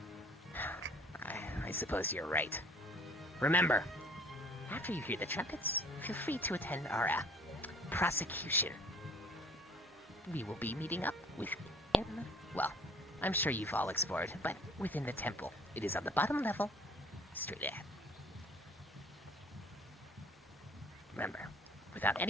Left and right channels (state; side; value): normal; both; correlation 0.53